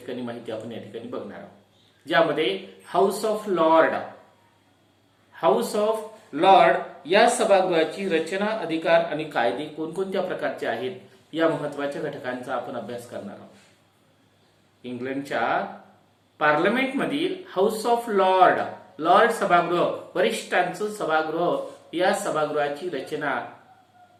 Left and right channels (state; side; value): identical; both; correlation 1.00